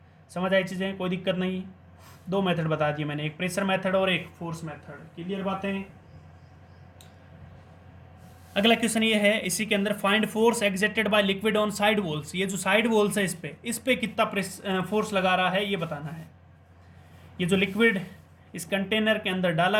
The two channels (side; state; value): both; identical; correlation 1.00